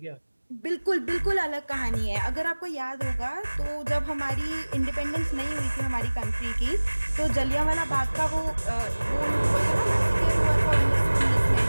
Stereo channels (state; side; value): inverted; both; correlation -1.00